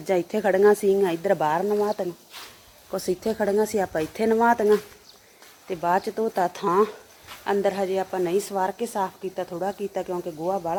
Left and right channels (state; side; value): identical; both; correlation 1.00